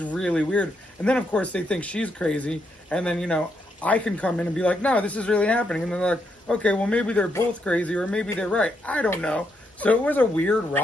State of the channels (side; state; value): both; normal; correlation 0.79